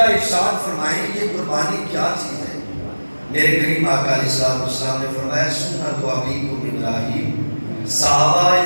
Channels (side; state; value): both; inverted; correlation -1.00